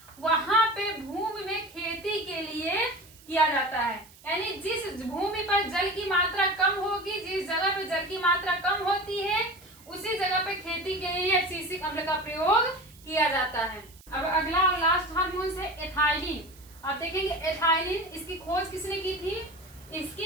वहां पे भूमि में खेती के लिए किया जाता है। यानी जिस भूमि पर जल की मात्रा कम होगी, जिस जगह पे जल की मात्रा कम होती है उसी जगह पे खेती के लिए एब्सिसिक अम्ल का प्रयोग किया जाता है। अब अगला और लास्ट हार्मोन है एथाइलिन। आप देखेंगे एथाइलिन, इसकी खोज किसने की थी?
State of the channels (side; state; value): right; noise; hiss, 24 dB below the sound